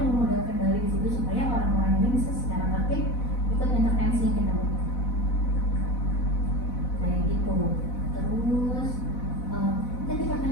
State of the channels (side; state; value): right; late; 4.1 ms